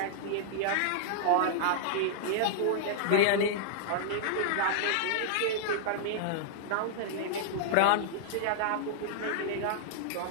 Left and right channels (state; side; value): different; both; correlation -0.01